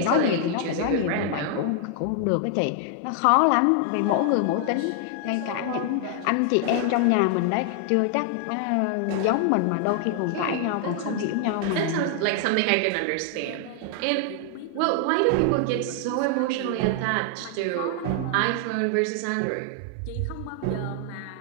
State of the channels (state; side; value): different; both; correlation 0.00